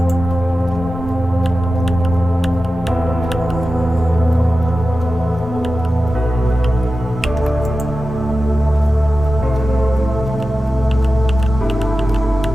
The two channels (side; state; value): both; normal; correlation 0.93